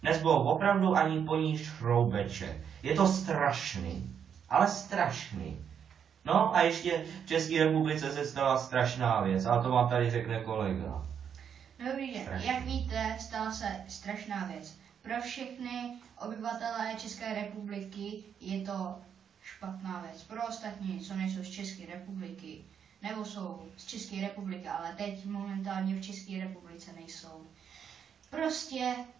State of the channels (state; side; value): quieter; left; 7.9 dB